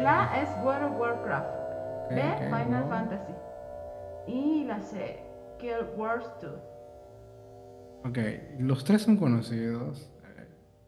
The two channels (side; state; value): both; identical; correlation 1.00